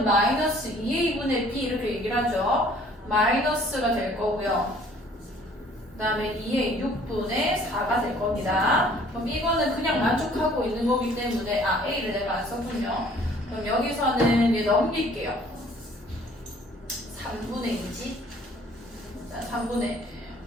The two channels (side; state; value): both; normal; correlation 0.56